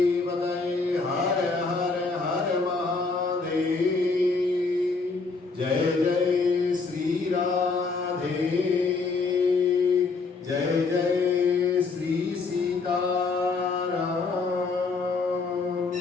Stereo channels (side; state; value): right; quieter; 4.2 dB